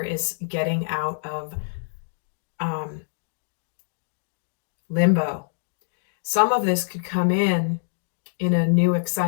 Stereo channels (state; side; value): silent; right; digital silence